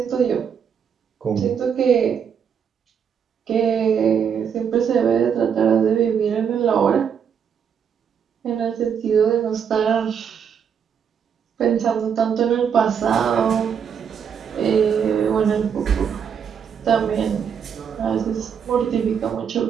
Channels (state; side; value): quieter; left; 7.4 dB